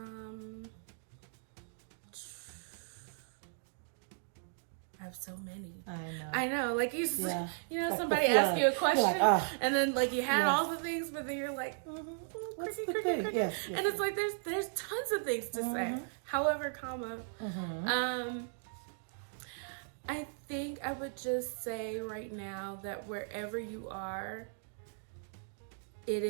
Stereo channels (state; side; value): silent; left; digital silence